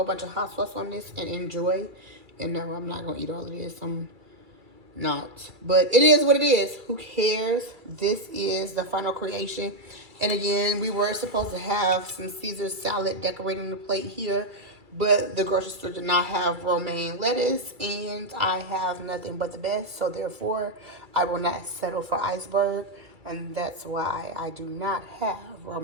bunch of hot sauce on this and enjoy. And no, I'm not gonna eat all of this. I'm not. But it is what it is. Who cares? This is the final creation. And again, we were supposed to have some Caesar salad decorating the plate here, but the grocery store did not have romaine lettuce, and I have nothing but the best, so therefore I will not settle for iceberg, and that's why I do not have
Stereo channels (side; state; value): left; late; 2.3 ms